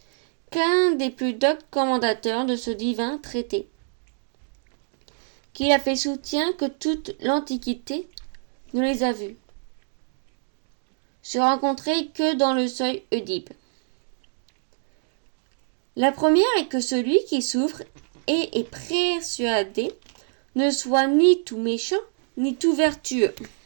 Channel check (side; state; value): left; silent; digital silence